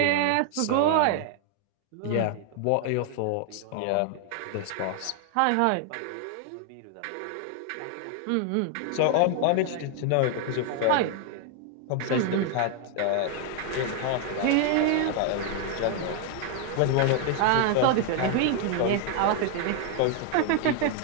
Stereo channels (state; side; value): different; both; correlation 0.00